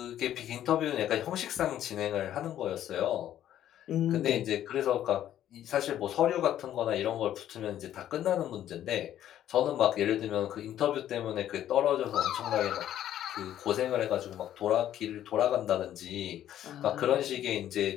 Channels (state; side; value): quieter; right; 11.6 dB